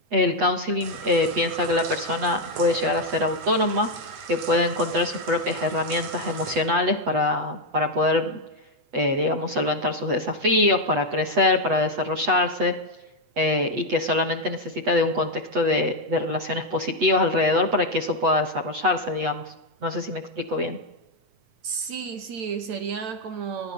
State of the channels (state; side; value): late; left; 8.2 ms